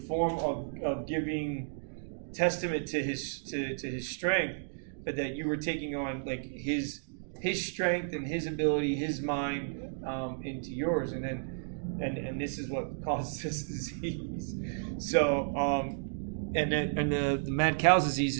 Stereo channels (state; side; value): silent; left; digital silence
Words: of giving testament to his strength, but that you were taking on like his strength and his ability, his mind into yours, and this is what causes this disease. So the mad cow's disease